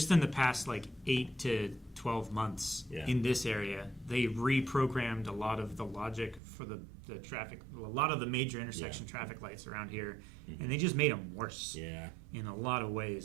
in the past, like, 8 to 12 months in this area, they reprogrammed a lot of the logic for the traffic, a lot of the major intersection traffic lights around here, and they just made them worse in a lot of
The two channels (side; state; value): left; drops out; at 6.4 s